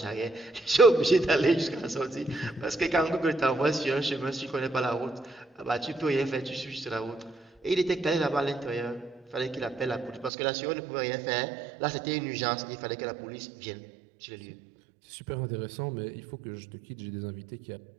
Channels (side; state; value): left; drops out; at 10.3 s